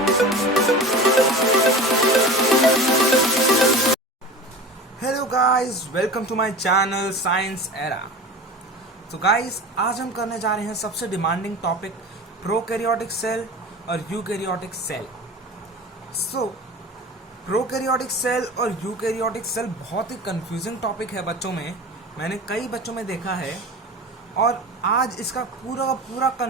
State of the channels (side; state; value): both; normal; correlation 0.34